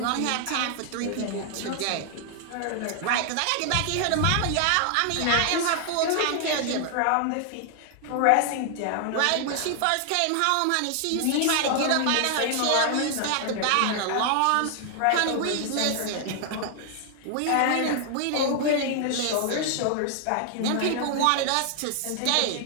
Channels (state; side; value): different; both; correlation 0.00